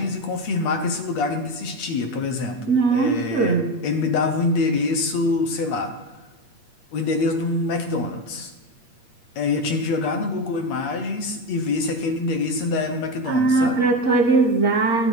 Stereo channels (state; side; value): late; right; 8.5 ms